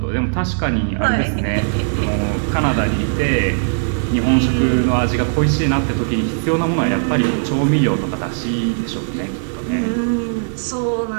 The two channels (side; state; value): left; silent; digital silence